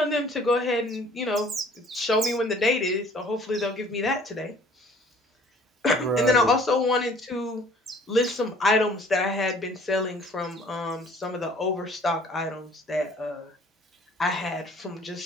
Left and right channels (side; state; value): both; normal; correlation 0.54